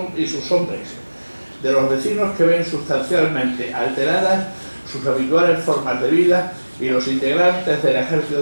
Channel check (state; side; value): inverted; both; correlation -1.00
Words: hombres, de los vecinos, que ven sustancialmente alteradas sus habituales formas de vida, y los integrantes del